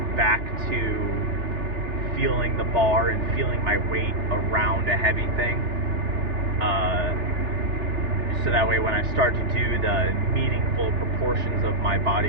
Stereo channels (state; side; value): late; left; 3.4 ms